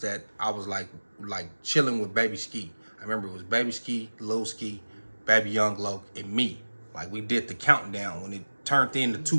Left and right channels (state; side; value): inverted; both; correlation -1.00